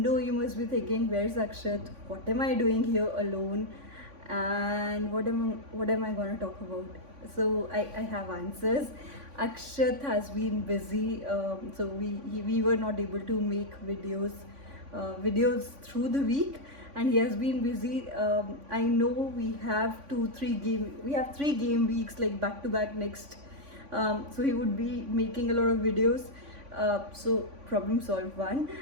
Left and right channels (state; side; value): late; left; 3.5 ms